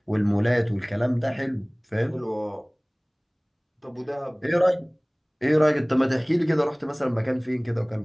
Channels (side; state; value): both; identical; correlation 1.00